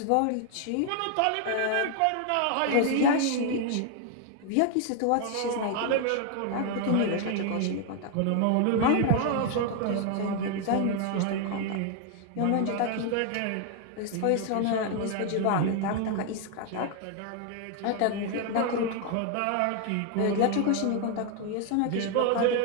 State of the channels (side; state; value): both; different; correlation 0.00